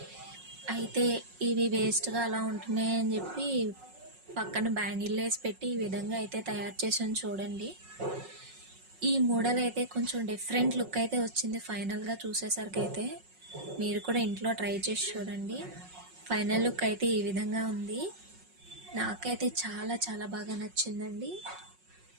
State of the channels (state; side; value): late; left; 5.4 ms